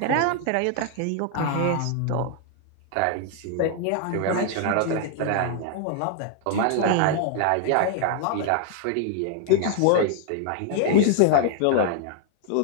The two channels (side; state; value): both; different; correlation 0.00